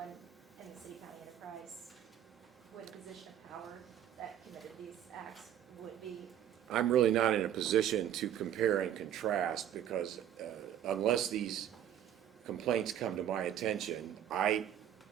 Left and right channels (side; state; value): left; quieter; 10.6 dB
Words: in the city county enterprise with a position of power that committed these acts would be? I'm really not in a position to compare and contrast because unless these complaints come to my attention, I,